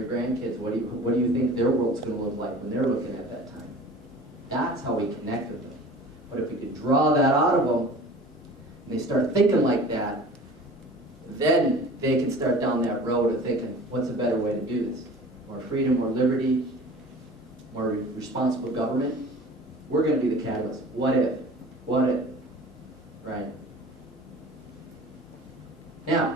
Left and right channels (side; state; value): both; normal; correlation 0.42